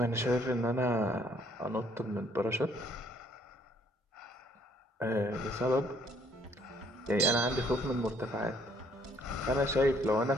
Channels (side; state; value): both; normal; correlation 0.65